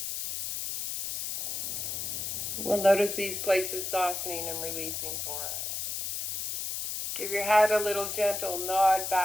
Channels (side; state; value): left; noise; hiss, 4 dB below the sound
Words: we'll notice these places softening and releasing for us. Give your head a little gentle nod